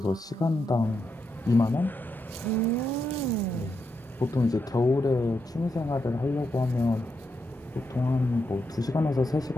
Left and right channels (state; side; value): normal; both; correlation 0.83